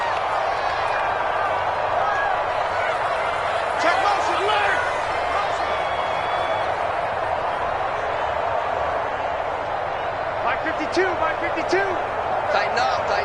Check motion, alert. By 52, by 52. Tighten up,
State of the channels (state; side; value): identical; both; correlation 1.00